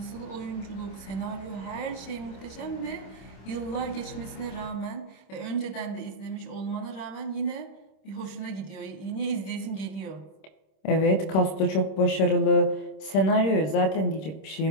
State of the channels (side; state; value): right; late; 26 ms